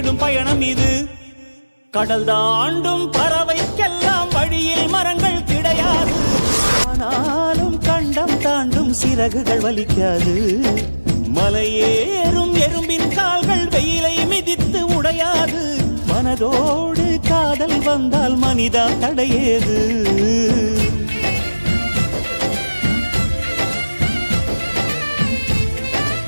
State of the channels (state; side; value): inverted; both; correlation -1.00